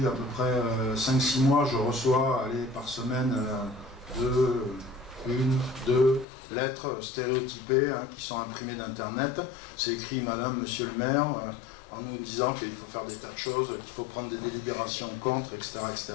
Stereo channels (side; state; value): right; drops out; at 6.2 s